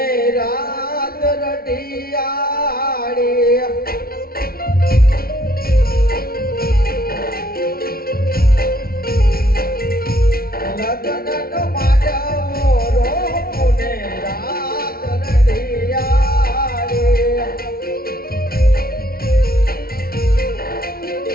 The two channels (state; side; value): late; right; 0.44 ms